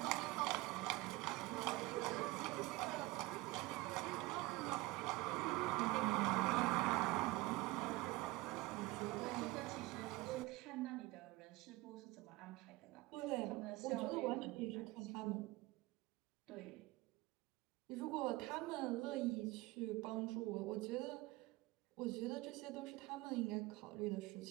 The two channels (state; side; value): quieter; left; 21.3 dB